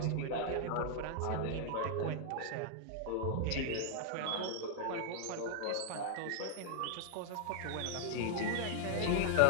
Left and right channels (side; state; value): both; different; correlation -0.01